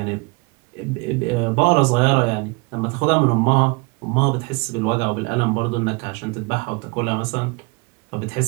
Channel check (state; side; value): quieter; left; 28.1 dB